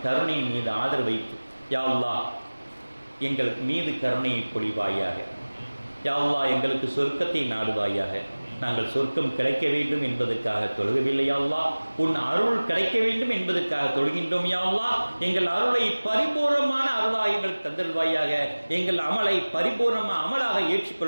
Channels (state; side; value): inverted; both; correlation -1.00